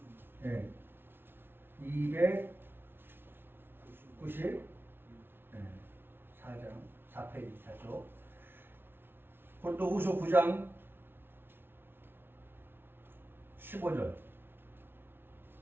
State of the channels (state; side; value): late; left; 0.11 ms